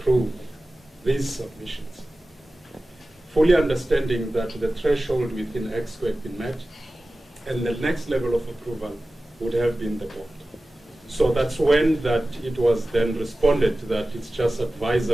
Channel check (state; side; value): normal; both; correlation 0.96